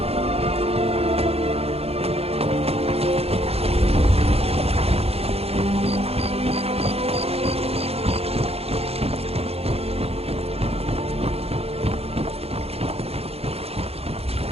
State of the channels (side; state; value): left; late; 0.29 ms